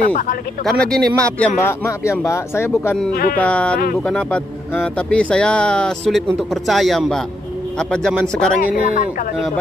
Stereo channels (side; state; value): both; normal; correlation 0.79